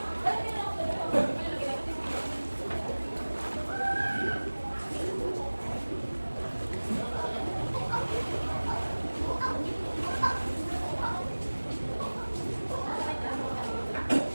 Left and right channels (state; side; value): inverted; both; correlation -1.00